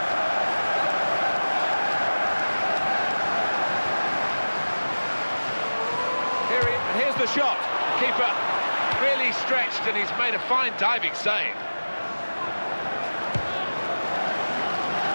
Here's the shot. Keeper really stretched, and he's made a fine diving save.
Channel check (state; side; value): inverted; both; correlation -1.00